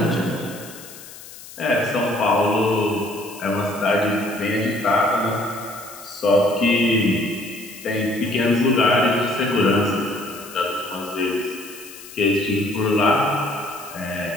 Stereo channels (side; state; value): left; noise; hiss, 17 dB below the sound